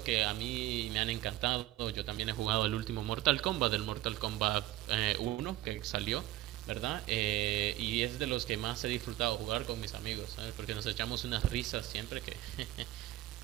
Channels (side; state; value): left; quieter; 15.3 dB